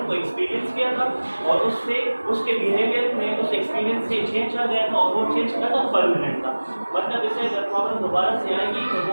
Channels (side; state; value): both; inverted; correlation -1.00